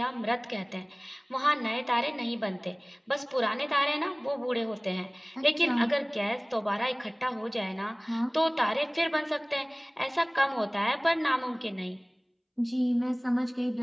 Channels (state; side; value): identical; both; correlation 1.00